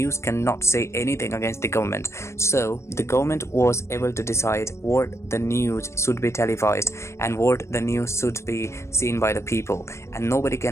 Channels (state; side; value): late; right; 0.13 ms